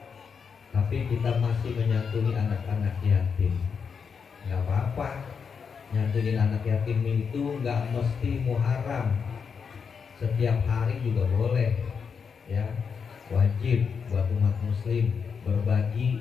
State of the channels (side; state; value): right; quieter; 6.1 dB